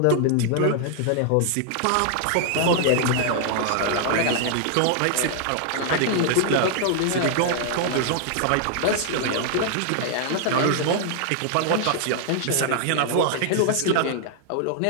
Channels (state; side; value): different; both; correlation 0.00